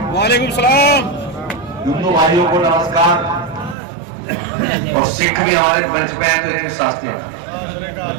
वालेकुम सलाम। हिंदू भाइयों को नमस्कार और सिख भी हमारे मंच पे हैं तो इनके शास्त्री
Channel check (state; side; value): drops out; left; at 3.8 s